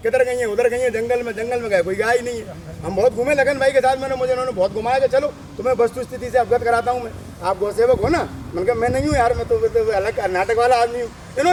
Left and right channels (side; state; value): both; identical; correlation 1.00